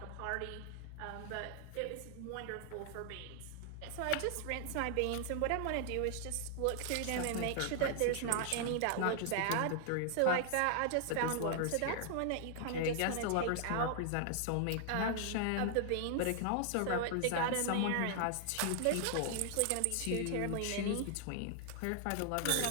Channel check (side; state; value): both; different; correlation 0.00